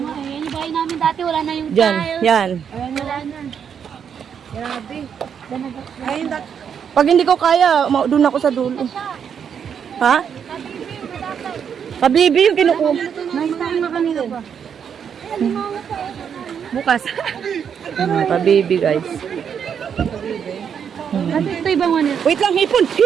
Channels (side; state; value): left; quieter; 7.7 dB